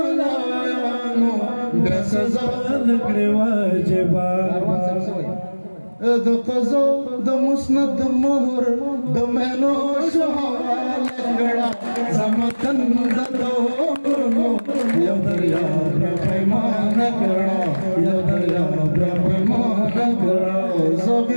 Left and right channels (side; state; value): both; inverted; correlation -1.00